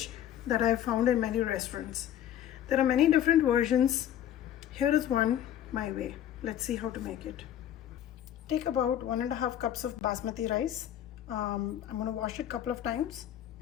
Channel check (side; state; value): right; quieter; 11.0 dB